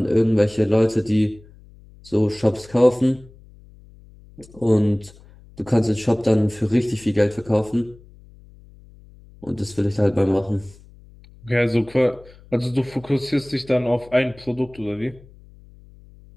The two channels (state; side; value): noise; left; hum, 24 dB below the sound